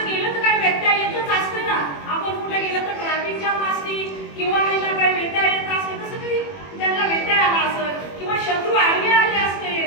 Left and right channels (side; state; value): right; late; 21 ms